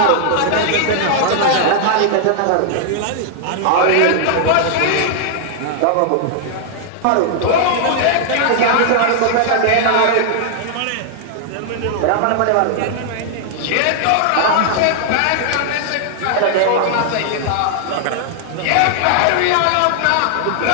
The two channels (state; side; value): different; both; correlation -0.01